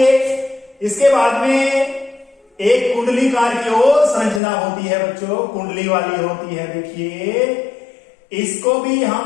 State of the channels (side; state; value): right; drops out; at 4.4 s